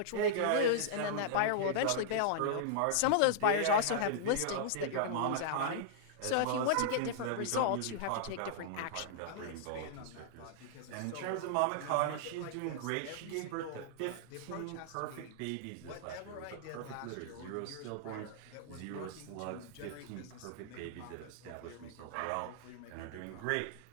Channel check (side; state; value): both; different; correlation -0.02